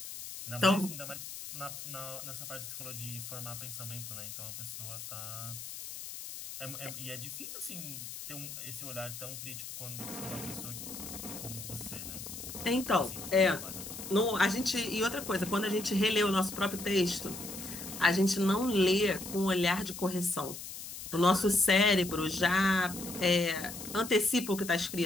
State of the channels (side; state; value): left; noise; hiss, 10 dB below the sound